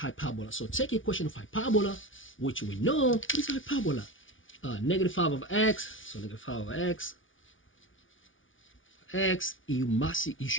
So take equation of hyperbola, which we know, what is hyperbola? Negative 5 over x, so negative 5 over x, you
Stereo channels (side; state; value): right; late; 0.57 ms